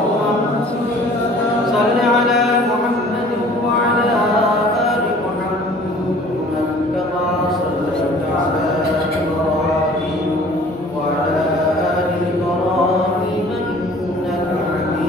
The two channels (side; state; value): both; normal; correlation 0.50